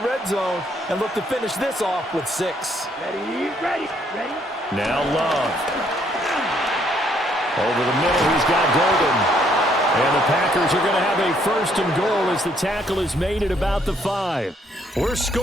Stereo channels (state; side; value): normal; both; correlation 0.68